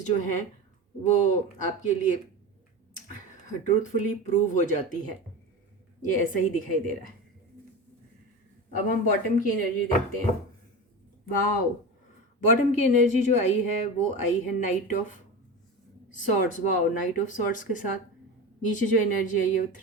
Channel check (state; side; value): normal; both; correlation 0.26